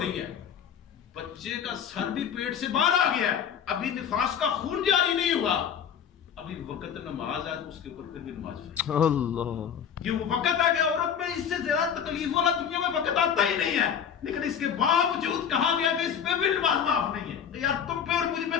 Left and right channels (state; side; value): quieter; right; 8.1 dB